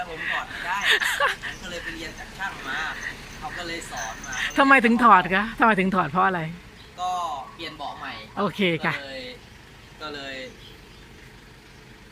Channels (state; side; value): identical; both; correlation 1.00